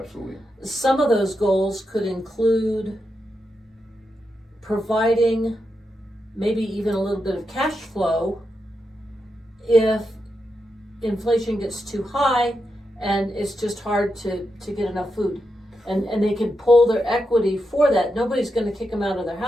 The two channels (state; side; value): normal; both; correlation 0.86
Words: Some of those goals could include providing maybe even a little bit of cash flow if inflation gets too high and it's just hard to get enough food. And they can pull their equity for that. Nobody's going to kick them out of their